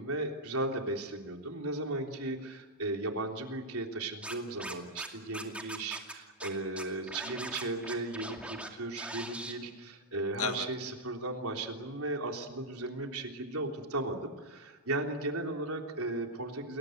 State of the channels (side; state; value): both; normal; correlation -0.05